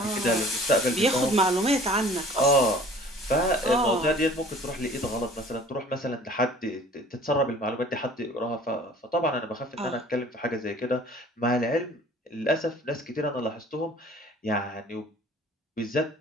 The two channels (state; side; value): normal; both; correlation 0.49